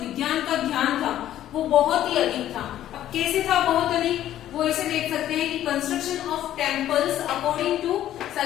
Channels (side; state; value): right; quieter; 12.3 dB